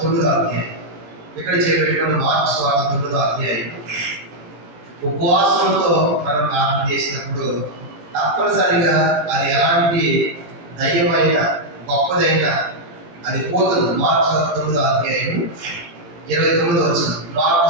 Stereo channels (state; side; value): late; left; 18 ms